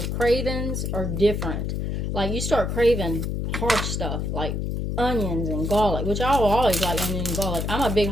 cravings are different. Like you start craving hard stuff like onions and garlic, which I will always like onion and garlic. I'm a big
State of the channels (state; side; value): noise; left; hum, 2 dB below the sound